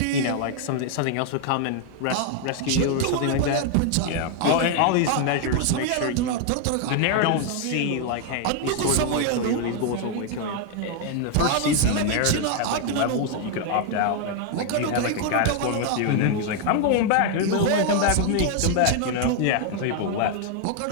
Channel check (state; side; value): different; both; correlation 0.00